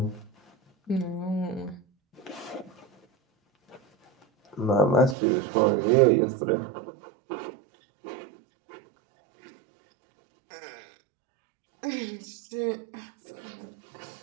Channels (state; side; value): drops out; left; at 5.2 s